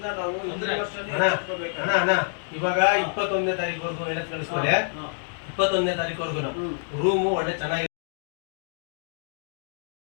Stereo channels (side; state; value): right; silent; digital silence